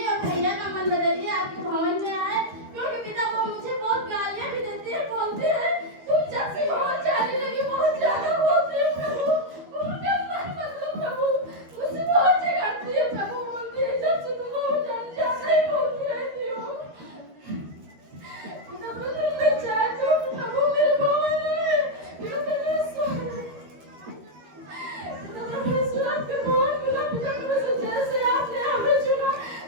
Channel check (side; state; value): left; late; 13 ms